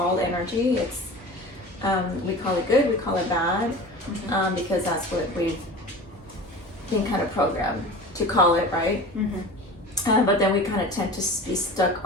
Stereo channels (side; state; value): both; normal; correlation 0.36